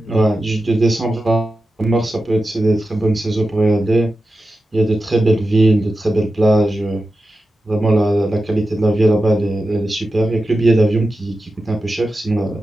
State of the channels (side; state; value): both; normal; correlation 0.92